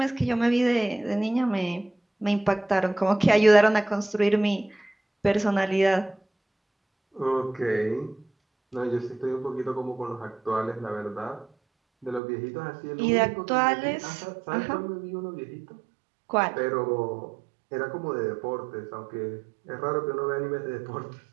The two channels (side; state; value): left; drops out; at 12.2 s